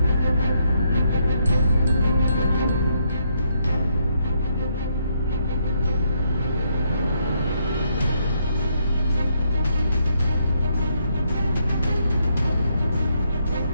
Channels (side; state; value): both; inverted; correlation -0.75